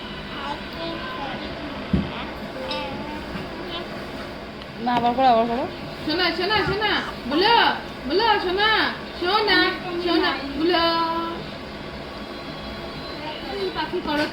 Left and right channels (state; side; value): identical; both; correlation 1.00